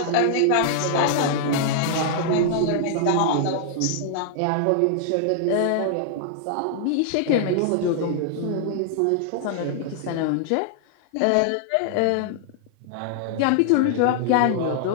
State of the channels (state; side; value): different; both; correlation -0.01